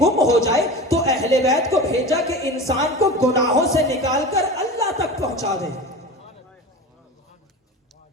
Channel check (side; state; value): both; normal; correlation 0.31